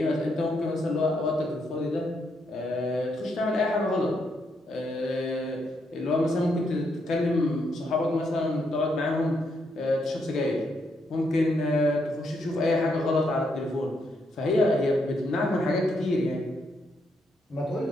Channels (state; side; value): normal; both; correlation 0.77